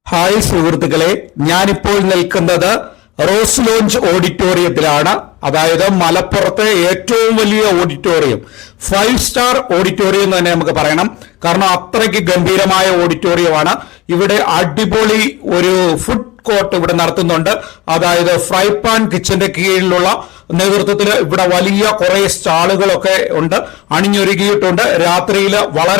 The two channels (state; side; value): quieter; right; 19.7 dB